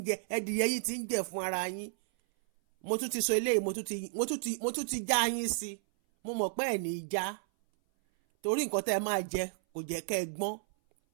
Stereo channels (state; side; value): silent; left; 56 dB below the other